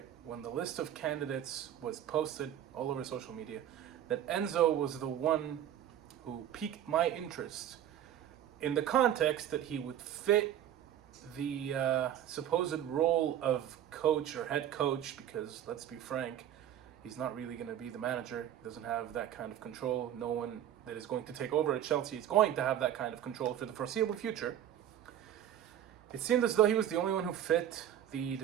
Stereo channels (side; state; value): left; quieter; 10.8 dB